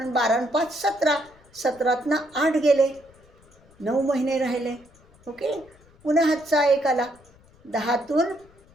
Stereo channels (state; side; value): noise; left; rumble, 28 dB below the sound